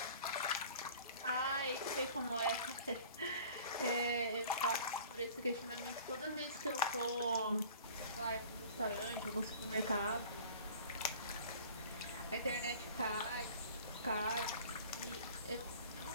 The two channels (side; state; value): both; inverted; correlation -0.46